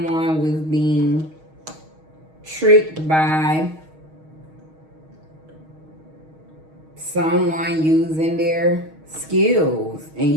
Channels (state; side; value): late; left; 6.4 ms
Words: was being tricked by someone using their skills and